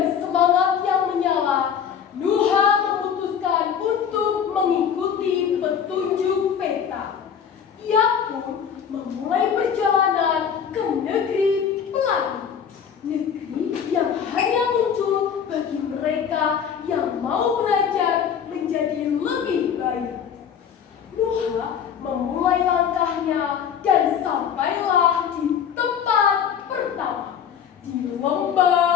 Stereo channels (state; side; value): quieter; right; 7.9 dB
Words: semangat yang menyala, Nuha memutuskan untuk mengikuti petunjuk peta. Ia pun memulai perjalanan ke negeri pelangi, negeri yang hanya muncul bagi mereka yang mau belajar menjadi lebih baik. Nuha memulai langkahnya dan sampailah di tempat pertama, di